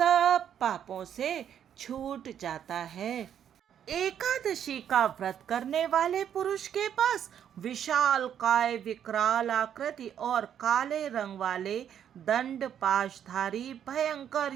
पापों से छूट जाता है। एकादशी का व्रत करने वाले पुरुष के पास विशाल काय, विकराल आकृति और काले रंग वाले दंड पाशधारी भयंकर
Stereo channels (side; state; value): left; quieter; 9.3 dB